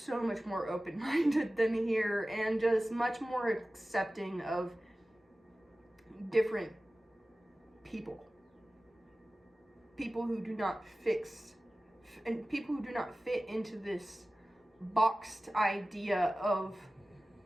much more open-minded than here, and just much more accepting of different people. People who do not fit into this boxed idea of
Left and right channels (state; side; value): normal; both; correlation 0.96